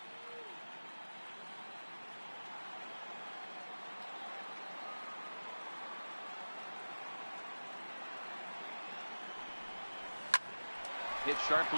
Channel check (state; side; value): inverted; both; correlation -1.00